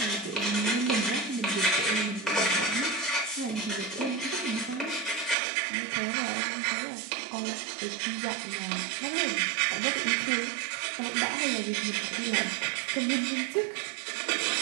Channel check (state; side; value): drops out; left; at 5.4 s